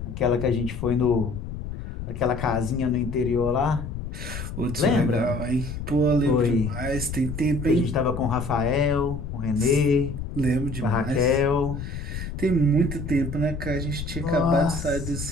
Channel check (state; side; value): noise; left; rumble, 7 dB below the sound